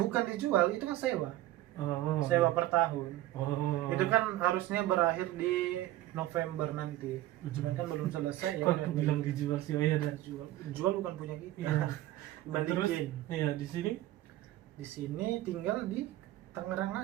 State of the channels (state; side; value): quieter; left; 15.2 dB